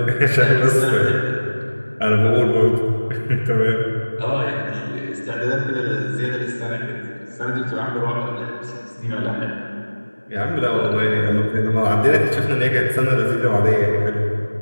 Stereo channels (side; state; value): both; inverted; correlation -1.00